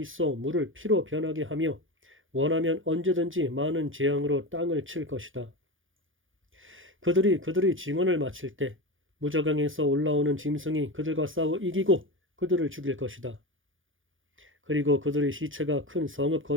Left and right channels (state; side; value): late; left; 0.58 ms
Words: 물을 피로 변하게 하며 원하면 언제든지 많은 재앙으로 땅을 칠 것이다. 그들이 그들의 증언을 마칠 때 무저강에서 올라오는 짐승이 그들과 싸워 이기고 그들을 죽일 것이다. 그리고 그들의 시체가 큰 성읍